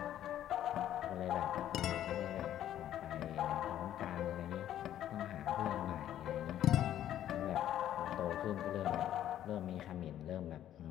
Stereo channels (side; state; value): right; quieter; 11.6 dB